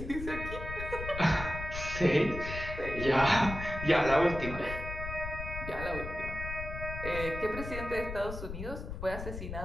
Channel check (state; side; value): noise; left; rumble, 7 dB below the sound